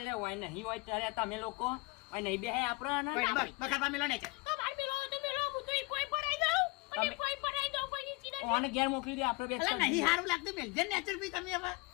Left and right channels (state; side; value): quieter; right; 24.9 dB